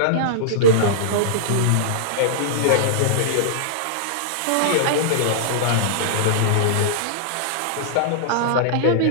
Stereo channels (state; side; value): different; both; correlation -0.02